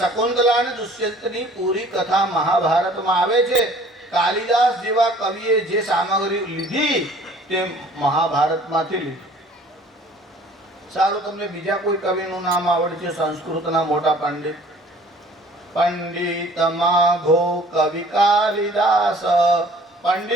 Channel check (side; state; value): both; normal; correlation 0.52